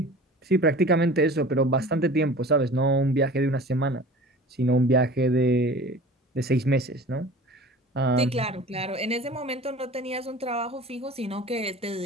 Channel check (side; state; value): both; normal; correlation 0.41